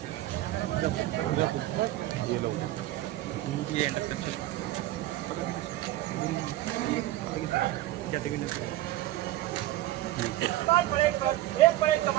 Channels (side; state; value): left; quieter; 15.7 dB